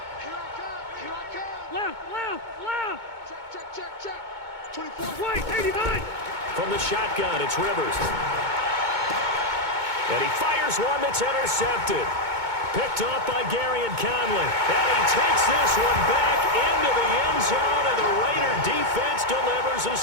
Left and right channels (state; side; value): late; left; 2.2 ms